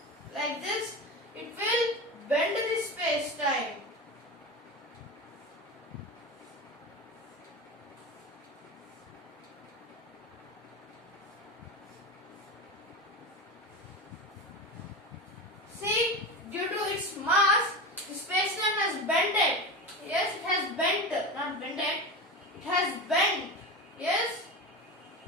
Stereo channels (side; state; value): both; normal; correlation 0.24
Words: Like this, it will bend the space-time. See, due to its mass, the space-time has bended. Yes, it has bent, not bended. It has bent. Yes.